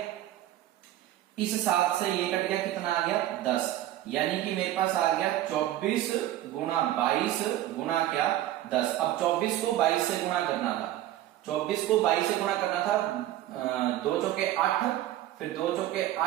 इस 7 से ये कट गया, कितना आ गया 10, यानी कि मेरे पास आ गया 24 गुणा 22 गुणा क्या 10। अब 24 को 22 से गुणा करना था, 24 को 22 से गुणा करना था, 2 चौके 8, फिर 2 चौके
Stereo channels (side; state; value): left; quieter; 13.7 dB